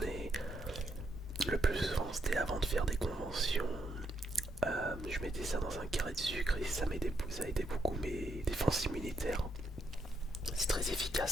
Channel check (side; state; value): both; normal; correlation 0.77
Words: le plus souvent, c'était avant de faire des conventions. Je mettais ça dans un carré de sucre et ça aidait beaucoup mes défenses immunitaires. C'est très efficace